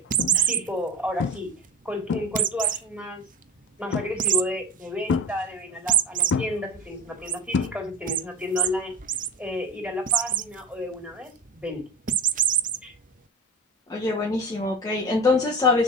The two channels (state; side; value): normal; both; correlation 0.28